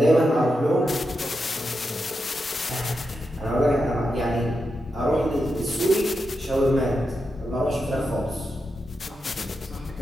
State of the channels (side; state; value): both; normal; correlation 0.87